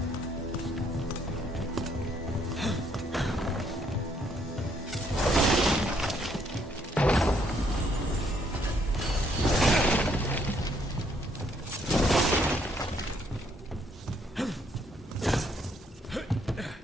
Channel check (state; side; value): normal; both; correlation 0.69